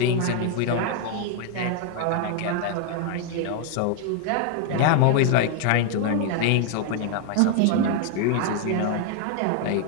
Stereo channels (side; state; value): both; different; correlation 0.01